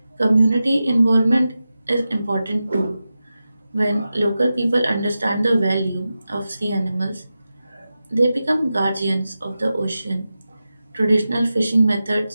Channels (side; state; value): both; inverted; correlation -0.93